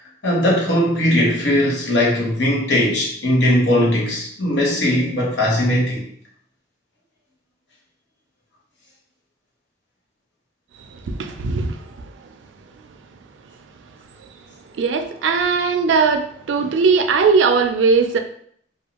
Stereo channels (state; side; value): normal; both; correlation 0.36